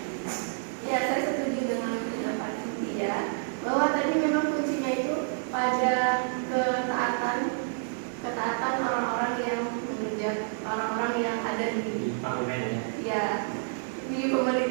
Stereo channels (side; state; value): left; silent; digital silence